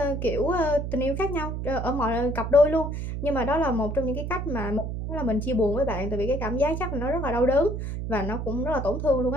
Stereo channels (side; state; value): right; noise; hum, 4 dB below the sound